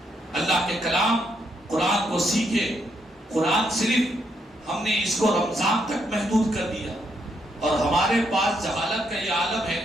اللہ کے کلام قرآن کو سیکھے. قرآن صرف ہم نے اس کو رمضان تک محدود کر دیا اور ہمارے پاس جہالت کا یہ عالم ہے.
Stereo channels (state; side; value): normal; both; correlation 0.76